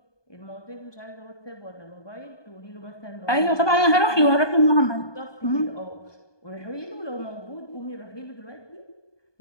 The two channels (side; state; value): right; late; 1.2 ms